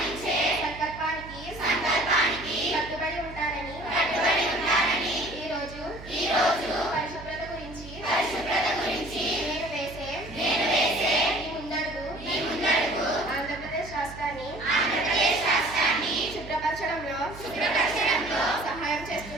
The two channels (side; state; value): right; noise; hum, 15 dB below the sound